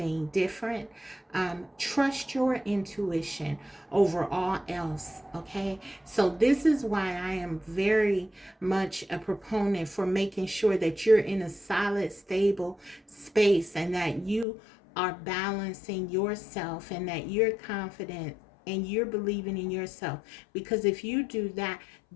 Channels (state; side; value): drops out; right; at 14.5 s